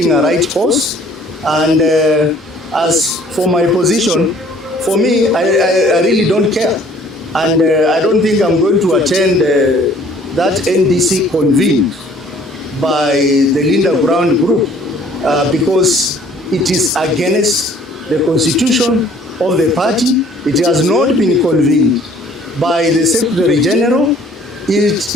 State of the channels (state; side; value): normal; both; correlation 0.56